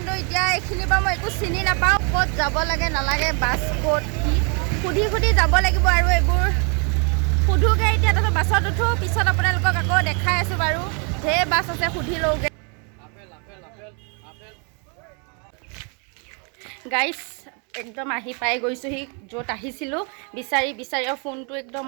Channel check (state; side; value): quieter; left; 36.5 dB